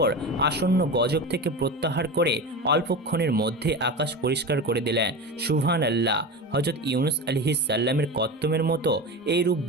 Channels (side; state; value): both; normal; correlation 0.26